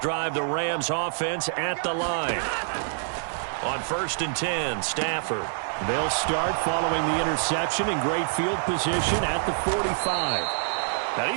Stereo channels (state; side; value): silent; left; 61 dB below the other